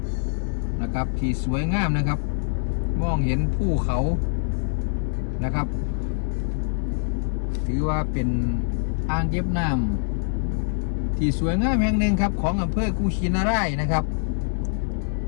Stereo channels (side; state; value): right; silent; digital silence